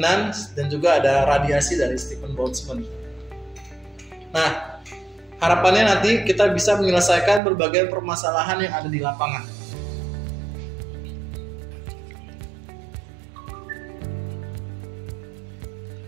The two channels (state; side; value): drops out; left; at 7.4 s